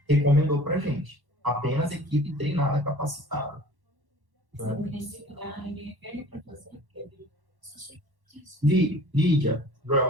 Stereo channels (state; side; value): late; left; 1.1 ms